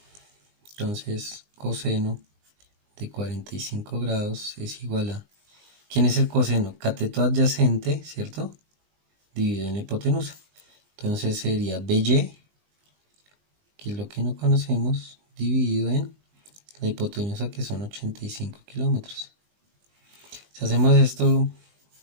Entonces coseno de 45 grados es igual a... ¿Quién es el coseno? Cateto adyacente, ¿cierto? Dividido en la hipotenusa. Entonces sería BY, que es lo que no conocemos, dividido en la hipotenusa, que son 85 kilómetros. Si hacemos esto,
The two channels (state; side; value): late; left; 20 ms